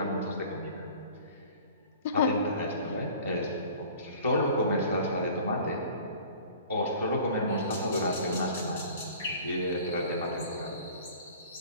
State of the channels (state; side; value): inverted; both; correlation -0.46